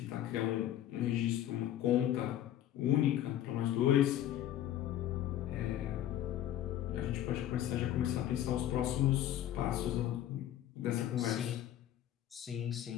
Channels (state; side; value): quieter; right; 11.9 dB